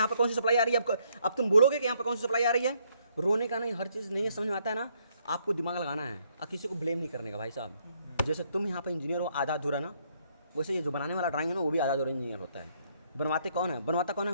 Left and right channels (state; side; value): inverted; both; correlation -0.71